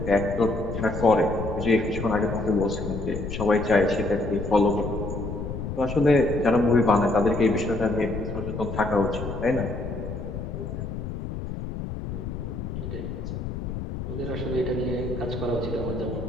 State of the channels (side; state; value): left; noise; rumble, 6 dB below the sound